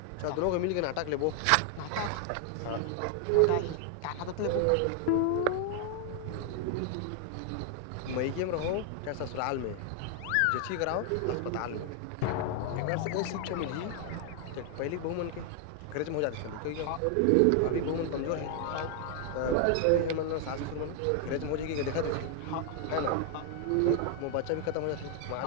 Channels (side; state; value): both; different; correlation 0.00